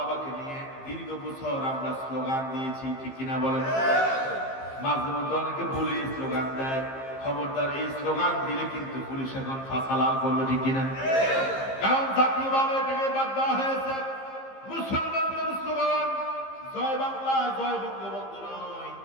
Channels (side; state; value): right; late; 15 ms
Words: নিয়ে দীর্ঘ বছর আমরা স্লোগান দিয়েছি, ঠিক কিনা বলেন? মাঝে মধ্যে অনেকে বলে স্লোগান দেয়, খবরদার এই স্লোগান দিলে কিন্তু পুলিশ এখন ফাঁসালাল করবে, ঠিক কিনা? কারণ জাতীয়ভাবে এটাকে বাদ দেওয়া হয়েছে। মুসলমানদের স্লোগান জয় বাংলা, জয় বঙ্গবন্ধু নয়,